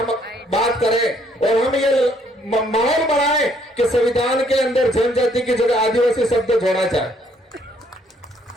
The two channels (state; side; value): normal; both; correlation 0.66